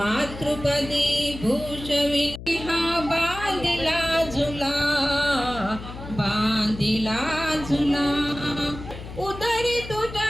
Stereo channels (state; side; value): noise; left; hum, 12 dB below the sound